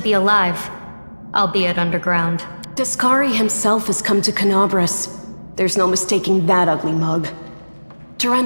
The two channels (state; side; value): inverted; both; correlation -1.00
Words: alive, albeit underground. Discari himself has come to Canabras. There's no mistaking that ugly mug.